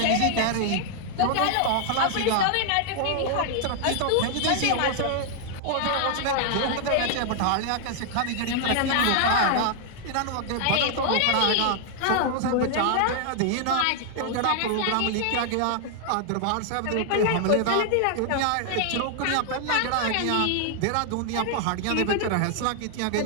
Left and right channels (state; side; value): different; both; correlation 0.00